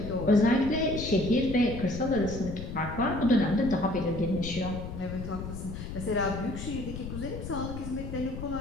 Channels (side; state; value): left; noise; rumble, 8 dB below the sound